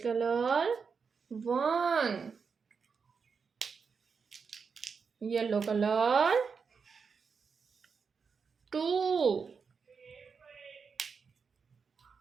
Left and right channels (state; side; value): quieter; left; 5.6 dB